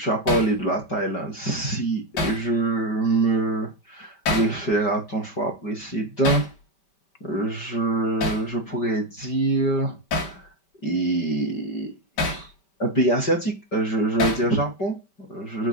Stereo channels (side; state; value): right; late; 5.1 ms